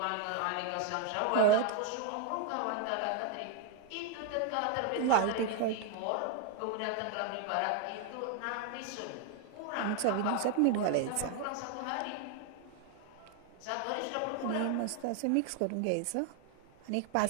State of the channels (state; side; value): different; both; correlation 0.00